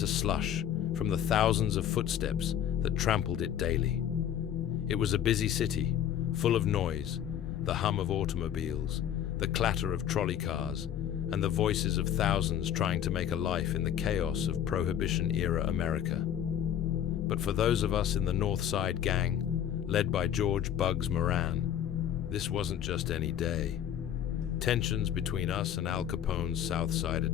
slush from the thousands of footsteps that trampled it daily. It was a busy city, full of noise, the hum of automobiles, the clatter of trolley cars, and the voices of thousands trying to make a life in the chaos of Prohibition-era America. But for those of us in the North Side Gang, led by George "Bugs" Moran, this wasn't just any day. Tensions between us and Al Capone's South Side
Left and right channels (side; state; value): right; quieter; 10.0 dB